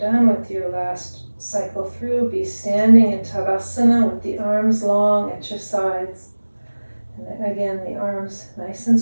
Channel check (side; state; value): both; inverted; correlation -1.00